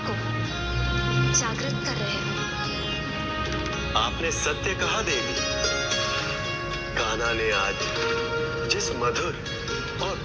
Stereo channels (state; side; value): identical; both; correlation 1.00